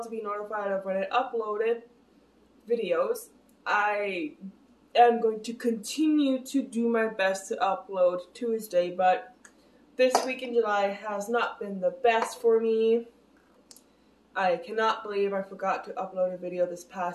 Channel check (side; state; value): both; identical; correlation 1.00